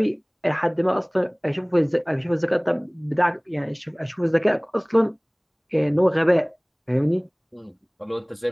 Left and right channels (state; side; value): identical; both; correlation 1.00